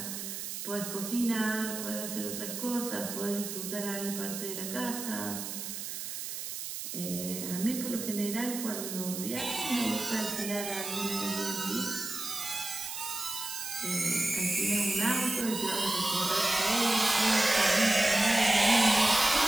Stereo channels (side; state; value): right; noise; hiss, 6 dB below the sound